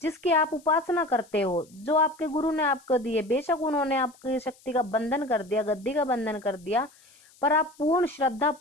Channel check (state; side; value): noise; left; hiss, 28 dB below the sound